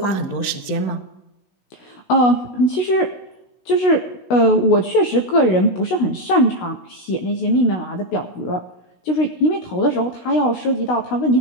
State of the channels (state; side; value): late; right; 16 ms